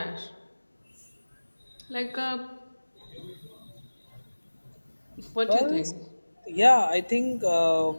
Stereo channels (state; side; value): inverted; both; correlation -1.00